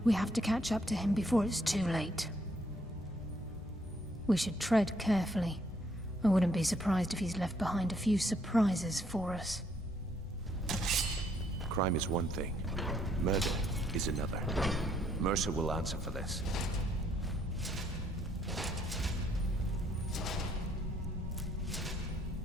We have to catch up to him before it's too late. We should tread carefully. I wouldn't be surprised if he's left behind a few surprises for us. Crime is one thing. Murder is another. Mercer will answer for this.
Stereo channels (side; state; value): both; normal; correlation 0.69